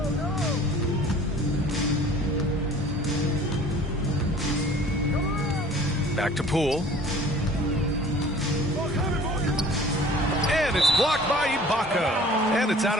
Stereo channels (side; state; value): both; normal; correlation 0.49